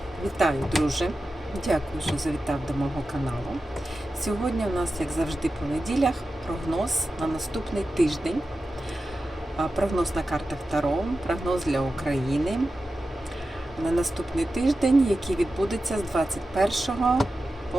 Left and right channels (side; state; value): both; normal; correlation 0.92